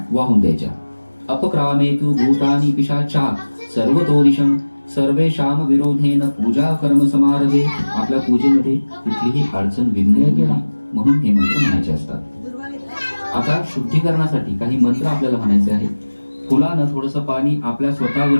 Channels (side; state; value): both; inverted; correlation -1.00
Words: वाहून द्यायच्या. अपक्रामेतु भूतानि पिशाचा सर्वतोदिशं सर्वेषां विरोधेन पूजा कर्म समारभे. आपल्या पूजेमध्ये कुठलीही अडचण विघ्न येणार म्हणून हे मंत्र म्हणायचे असतात. आता शुद्धीकरणासाठी काही मंत्र आपल्याला म्हणायचे आहेत. फुलानं थोडंसं पाणी आपल्या